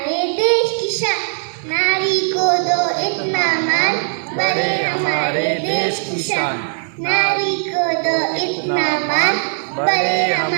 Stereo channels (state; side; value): silent; left; 67 dB below the other